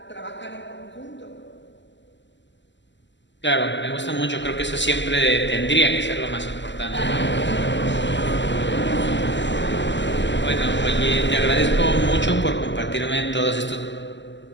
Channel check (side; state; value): right; late; 0.53 ms